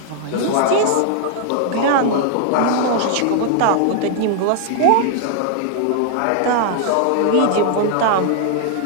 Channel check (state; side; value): different; both; correlation 0.00